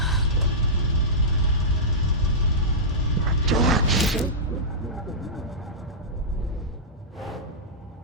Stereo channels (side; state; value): both; normal; correlation -0.15